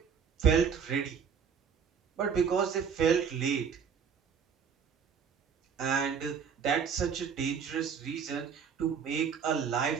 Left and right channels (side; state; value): left; quieter; 6.7 dB